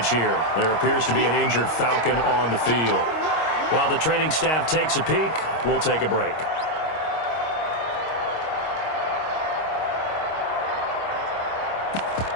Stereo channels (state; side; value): late; right; 26 ms